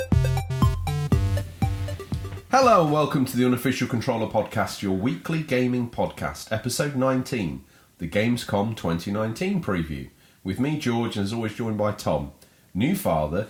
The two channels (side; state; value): both; identical; correlation 1.00